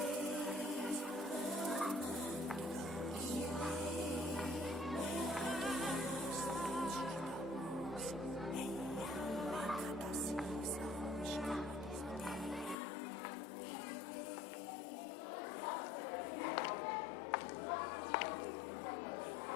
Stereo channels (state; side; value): drops out; right; at 12.8 s